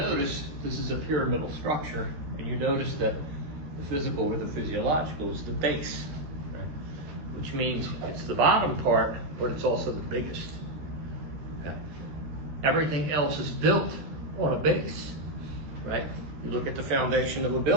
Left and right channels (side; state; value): left; late; 13 ms